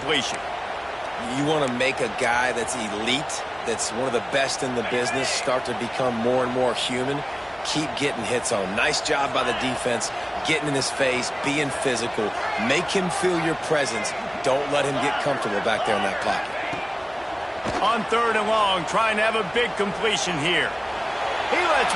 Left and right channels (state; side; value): identical; both; correlation 1.00